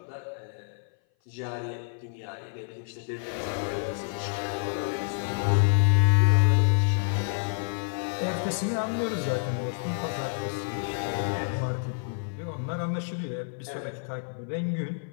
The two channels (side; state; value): right; silent; 57 dB below the other